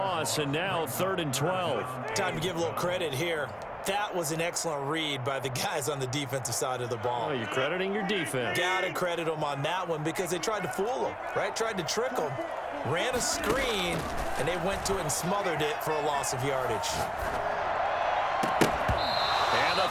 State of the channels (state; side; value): identical; both; correlation 1.00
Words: and now 3rd and 12. Time to give a little credit here. That was an excellent read by the guys on the defensive side of the ball. Oh, you're crediting your defense. Gotta credit them on that one because they tried to fool them, right? Tried to trick them. Ran a screen, and they went to it and smothered it for a loss of yardage. And the